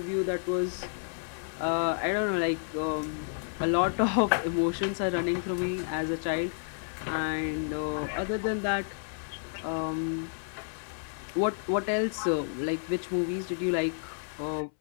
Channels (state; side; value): silent; right; 57 dB below the other